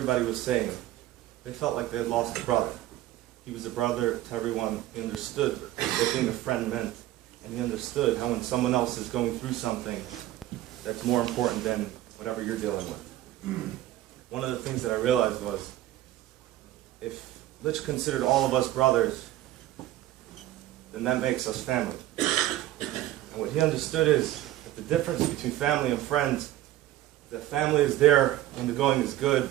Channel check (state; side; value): quieter; left; 14.6 dB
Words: was saying, they felt like they had lost a brother. He was a brother to everyone. He understood what being a friend meant, and he understood how when someone else is going through something that's more important than whatever you're dealing with. One of the things that I realized was, if Litch considered all of us brothers, then that makes us family. And what he understood is that the difference between family and friends, that family is there when the going is good,